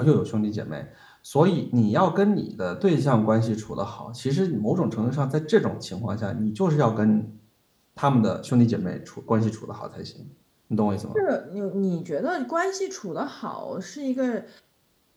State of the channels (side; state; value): both; identical; correlation 1.00